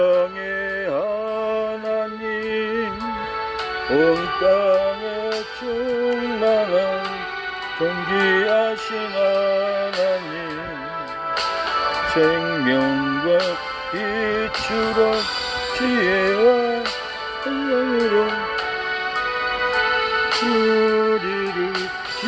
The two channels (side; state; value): both; identical; correlation 1.00